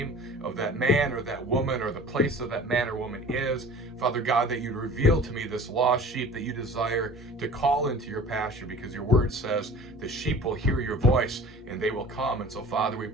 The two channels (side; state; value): both; normal; correlation 0.42